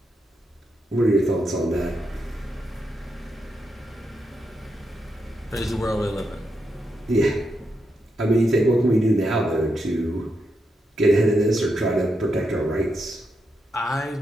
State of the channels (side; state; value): both; normal; correlation 0.84